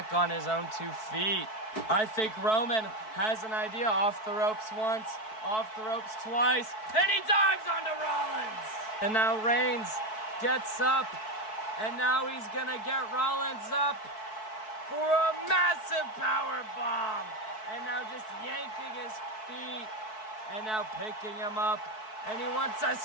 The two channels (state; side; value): late; right; 4.6 ms